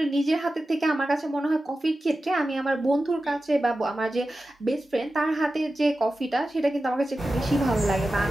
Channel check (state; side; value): normal; both; correlation 0.93